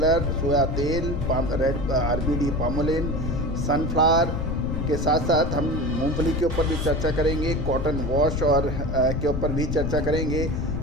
सोया तेल, रेड आरबीडी पामोलिन, सनफ्लावर के साथ साथ हम मूंगफली के ऊपर भी चर्चा करेंगे, कॉटन वॉश और के ऊपर भी चर्चा करेंगे,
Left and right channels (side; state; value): left; noise; rumble, 3 dB below the sound